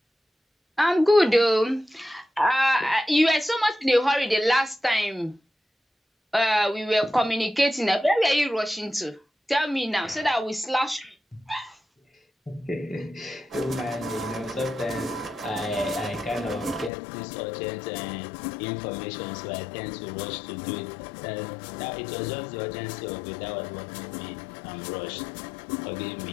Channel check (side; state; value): right; drops out; at 16.9 s